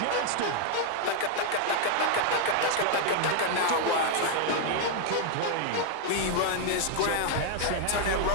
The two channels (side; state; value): both; different; correlation 0.00